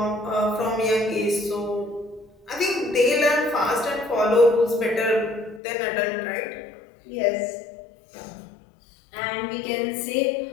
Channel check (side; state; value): right; drops out; at 5.6 s